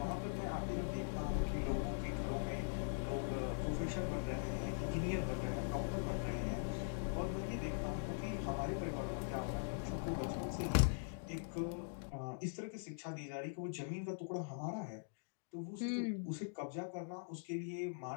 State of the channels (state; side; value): silent; right; digital silence